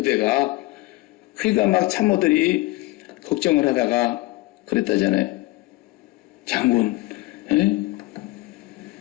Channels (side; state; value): right; quieter; 20.3 dB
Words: 그러니까 막 참모들이 걱정을 하다가 그랬다잖아요. 장군,